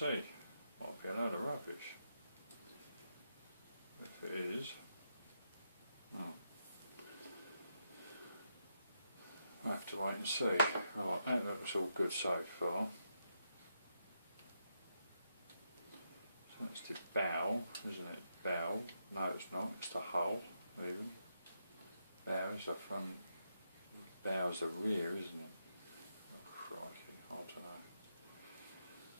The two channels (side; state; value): both; inverted; correlation -0.82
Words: Might be a load of rubbish. If it is, oh. I'll have to wait and see. Right, that looks all good so far. So that's the bow, isn't it? Bow. No, it's not. It's the hull, even. Bow is the front. Bow is the rear, isn't it? Oh, crikey. I don't know.